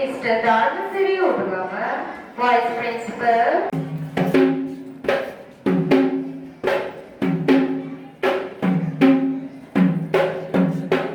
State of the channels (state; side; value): identical; both; correlation 1.00